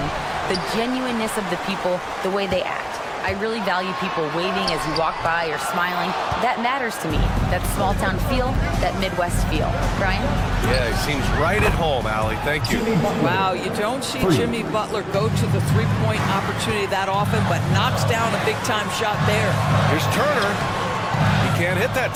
The genuineness of the people, the way they act. I really value people waving as you walk by or smiling. That matters to me. That small town feel, that Midwest feel. Brian? Yeah, he seems right at home, Allie. Thank you. Wow, you don't see Jimmy Butler go to the three-point opportunity that often, but knocks down a big-time shot there. Here's Turner. He can't hit that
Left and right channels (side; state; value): both; identical; correlation 1.00